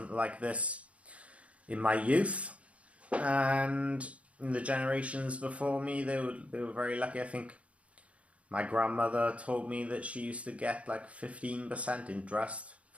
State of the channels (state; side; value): late; left; 0.063 ms